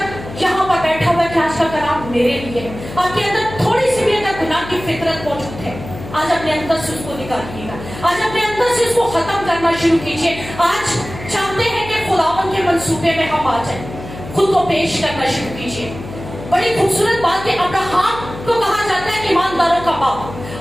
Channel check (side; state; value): left; noise; hum, 13 dB below the sound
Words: یہاں پر بیٹھا ہوا ہے کہ آج کا کلام میرے لیے ہے, آپ کے اندر تھوڑی سی بھی اگر گناہ کی فطرت موجود ہے, آج اپنے اندر سے اس کو نکالیے گا, آج اپنے اندر سے اس کو ختم کرنا شروع کیجیے. آج چاہتے ہیں کہ خداوند کے منصوبے میں ہم آ جائیں, خود کو پیش کرنا شروع کیجیے. بڑی خوبصورت بات کہ ابراہیم کو کہا جاتا ہے ایمانداروں کا باپ,